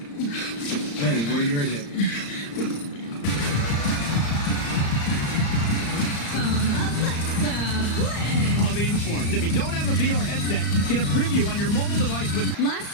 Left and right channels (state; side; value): late; right; 35 ms